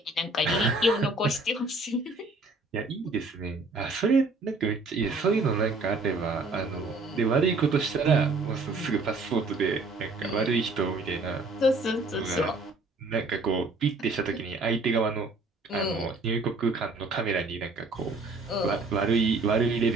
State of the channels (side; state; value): left; quieter; 3.3 dB